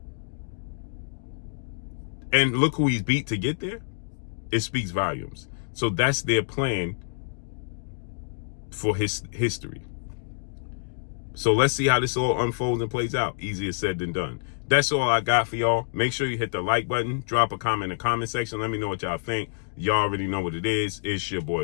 And look who he's beat to get there. It speaks volumes. So that's their plan for his history. So let's see how this all unfolds and plays out. Easier said than done. That's all I got for y'all. Make sure you hit the like button. Drop a comment in the comment section. Let me know what y'all think. Y'all already know what it is. It's your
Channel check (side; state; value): right; silent; digital silence